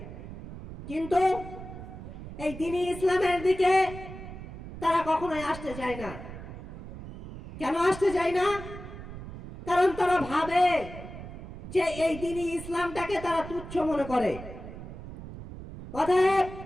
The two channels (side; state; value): right; noise; rumble, 12 dB below the sound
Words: কিন্তু এই দ্বীনি ইসলামের দিকে তারা কখনোই আসতে চায় না। কেন আসতে চায় না? কারণ তারা ভাবে যে এই দ্বীনি ইসলামটাকে তারা তুচ্ছ মনে করে। অতএব